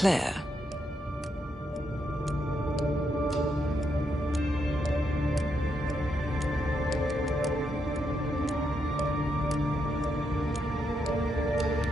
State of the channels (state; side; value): normal; both; correlation 0.81